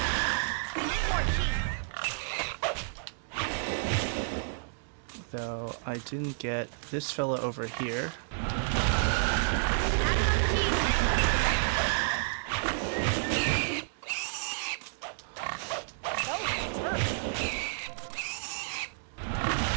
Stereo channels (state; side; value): silent; left; digital silence